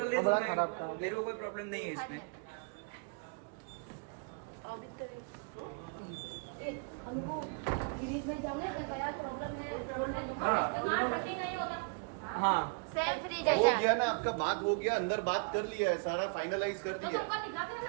दे दूंगा, मेरे को कोई प्रॉब्लम नहीं है इसमें। अभी तो हमको फ्रिज में जाने का क्या प्रॉब्लम है बोलने दो इसका कटिंग नहीं होता हाँ सेम फ्रिज हो है गया ना आपका, बात हो गया, अंदर बात कर लिया है, सारा फाइनलाइज कर तो दिया है। तुमको दिखा कर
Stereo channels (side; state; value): left; quieter; 36.5 dB